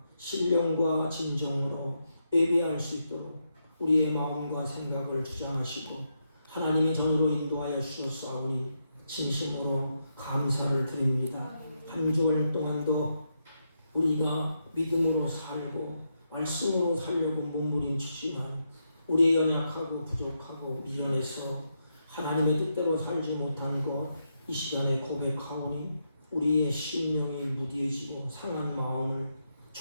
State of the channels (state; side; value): inverted; both; correlation -0.82